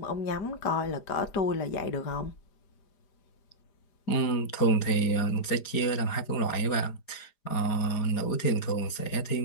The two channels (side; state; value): right; late; 4.9 ms